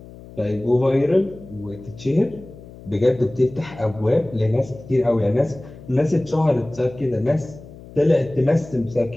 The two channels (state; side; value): noise; left; hum, 18 dB below the sound